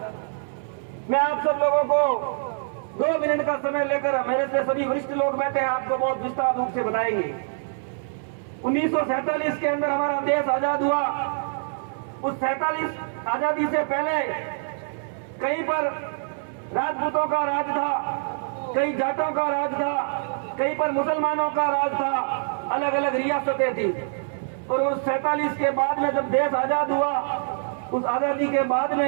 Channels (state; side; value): silent; left; 62 dB below the other